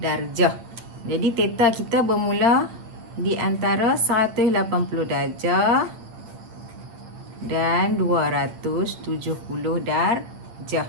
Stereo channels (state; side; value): late; left; 8.9 ms